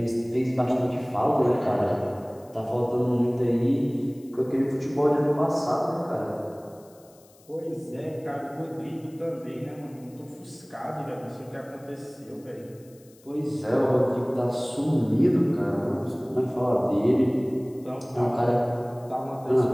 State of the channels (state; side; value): noise; left; hiss, 28 dB below the sound